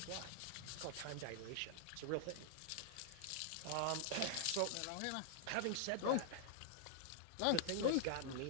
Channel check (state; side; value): different; both; correlation -0.01